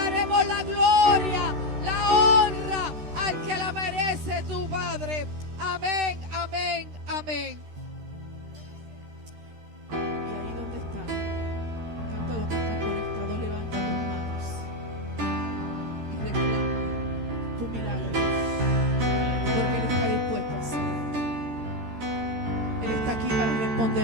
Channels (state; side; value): late; left; 13 ms